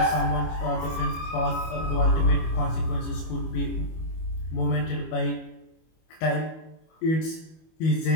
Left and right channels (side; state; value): right; late; 25 ms